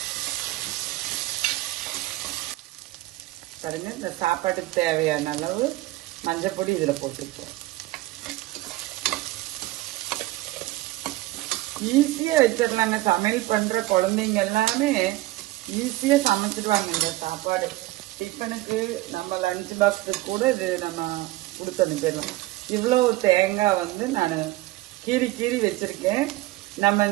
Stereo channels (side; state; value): left; quieter; 17.9 dB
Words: பாருங்க, இந்த சாப்பாட்டுக்கு தேவையான அளவு மஞ்சள் பொடி இதில் போட்டு போகிறேன். ஈஸியாக வச்சிடலாங்க. சமையல் பண்ணுற குழந்தைங்க எல்லாமே ஈஸியாக சமைச்சிடுவாங்க. இந்த சாப்பாடு டிஃபனுக்கு நம்ம லஞ்ச் பாக்ஸுக்கு கூட இது நம்ம கொடுத்து அனுப்பிடலாம். இவ்வளோ தேங்காய் வந்து நான் கீறி வச்சிருக்கேன். நம்ம